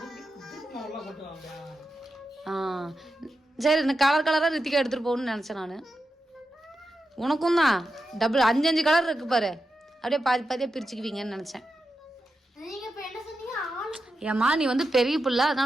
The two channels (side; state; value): both; normal; correlation 0.89